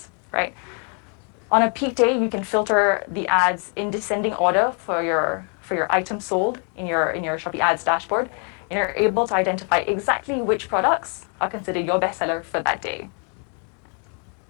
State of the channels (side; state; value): right; quieter; 39.8 dB